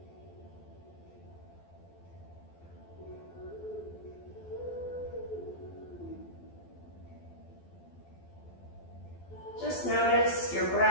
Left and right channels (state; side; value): late; right; 12 ms